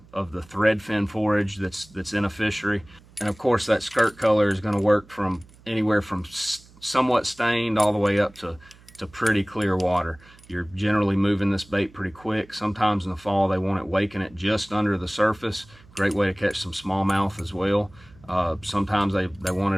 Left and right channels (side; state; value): right; noise; hum, 25 dB below the sound